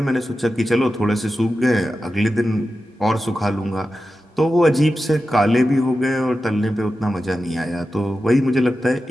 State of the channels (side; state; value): both; normal; correlation 0.92